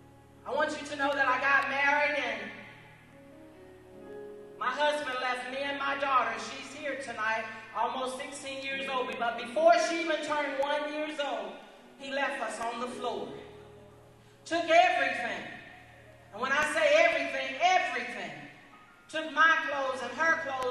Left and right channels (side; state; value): both; identical; correlation 1.00